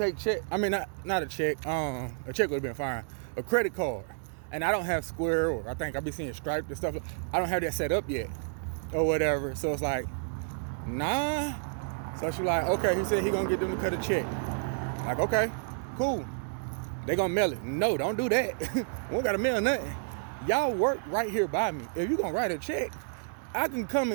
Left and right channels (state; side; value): silent; left; digital silence